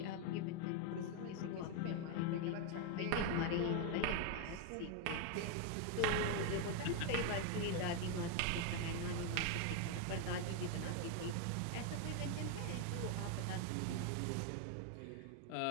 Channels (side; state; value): both; different; correlation 0.01